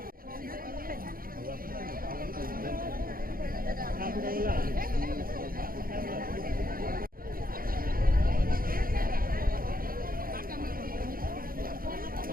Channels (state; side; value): late; left; 0.42 ms